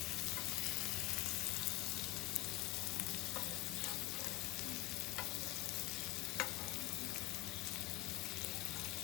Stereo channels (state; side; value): quieter; right; 18.0 dB